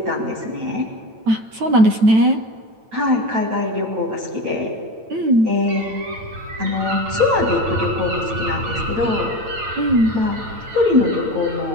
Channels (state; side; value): late; left; 9.0 ms